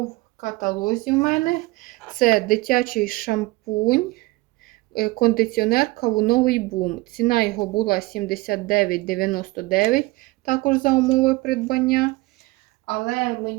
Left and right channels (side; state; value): left; quieter; 21.7 dB